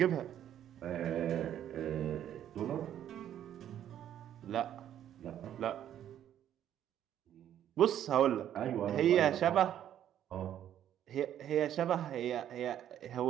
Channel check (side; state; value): left; quieter; 10.7 dB